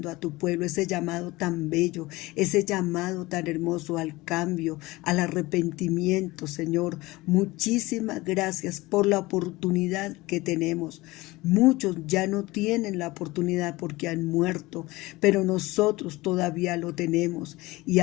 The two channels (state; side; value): quieter; right; 20.6 dB